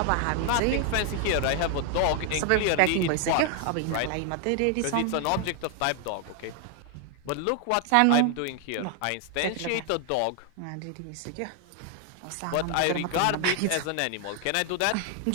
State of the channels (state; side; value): different; both; correlation 0.00